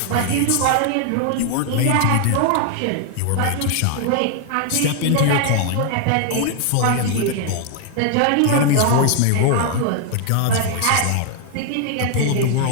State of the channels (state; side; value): different; both; correlation 0.00